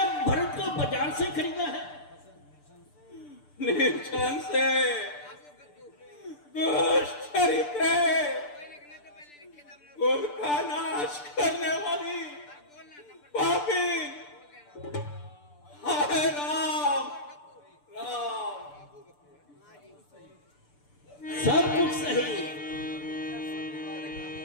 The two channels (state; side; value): late; right; 6.8 ms